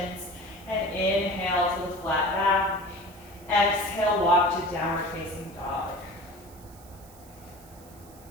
and inhale to the flat back. Exhale, walk to downward facing dog.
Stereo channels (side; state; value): right; noise; hiss, 23 dB below the sound